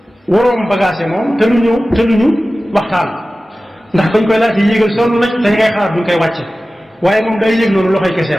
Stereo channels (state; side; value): normal; both; correlation 0.96